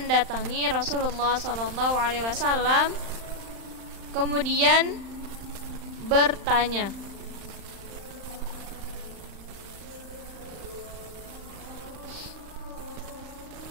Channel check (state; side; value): late; left; 35 ms